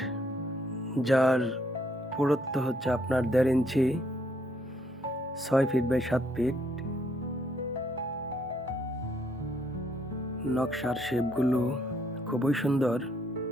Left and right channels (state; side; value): normal; both; correlation 0.70